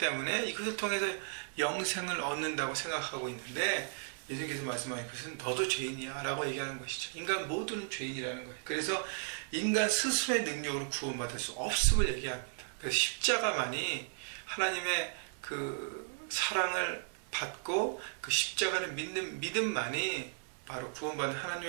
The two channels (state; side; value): silent; left; digital silence